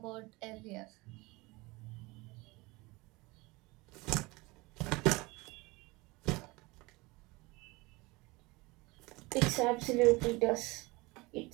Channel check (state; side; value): quieter; left; 23.5 dB